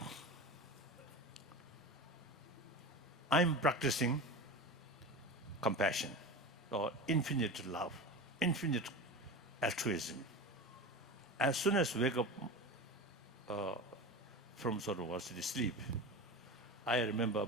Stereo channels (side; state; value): both; normal; correlation 0.28